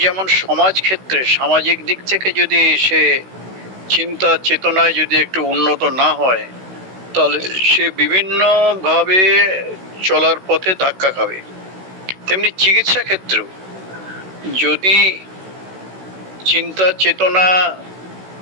যেমন সমাজ ক্ষেত্রে সামাজিক দিক থেকে যদি সে চিন্তা চেতনায় যদি একটু উন্নত না হয়, তাহলে সে বিভিন্নভাবে চলার পথে ধাক্কা খাবে। তেমনি চিকিৎসা ক্ষেত্রেও যদি চিন্তা চেতনা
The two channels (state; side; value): late; left; 16 ms